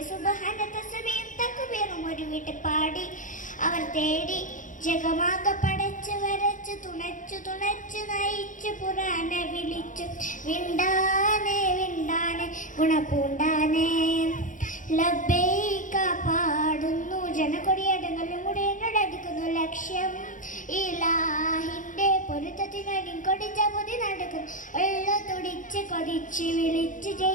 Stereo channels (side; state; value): right; late; 0.38 ms